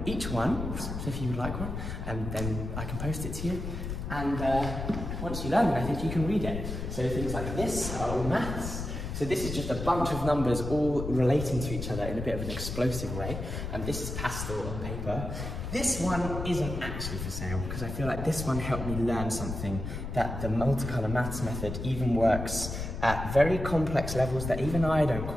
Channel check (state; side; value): noise; left; rumble, 5 dB below the sound